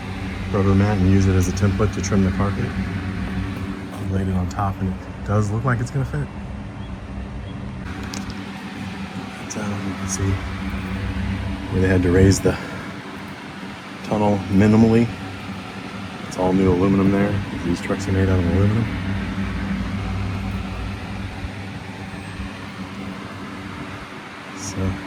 rubber mat and use it as a template to trim the carpet. I laid it on top and it does look like it's gonna fit. You can see where they had to raise the tunnel minimally. It's all new aluminum there. These trucks are made out of aluminum.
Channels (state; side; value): identical; both; correlation 1.00